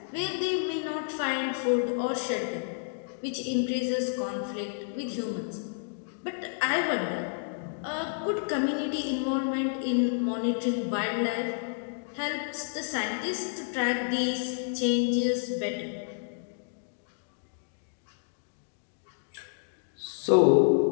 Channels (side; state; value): right; silent; digital silence